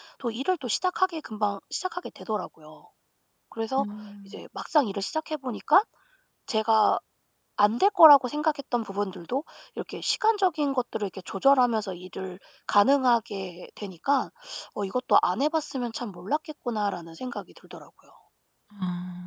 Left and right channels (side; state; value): both; identical; correlation 1.00